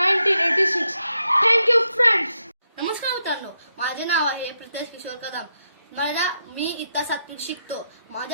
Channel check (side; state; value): both; inverted; correlation -0.82